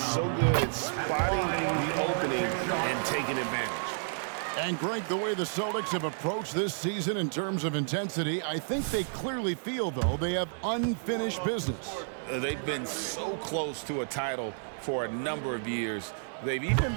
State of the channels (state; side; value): silent; left; 57 dB below the other